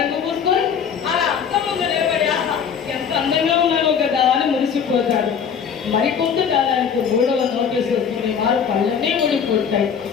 పూసుకొని అలా అర్థం ముందు నిలబడి ఆహా ఎంత అందంగా ఉన్నాను కదా అని మురిసిపోతాడు. మరికొంతకాలానికి 3వ నోటీసు వస్తుంది. వారు కళ్ళనే ఊడిపోతాయి.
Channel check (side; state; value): right; quieter; 7.2 dB